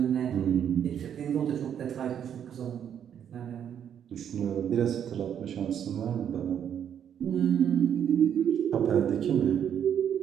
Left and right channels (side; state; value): left; quieter; 9.0 dB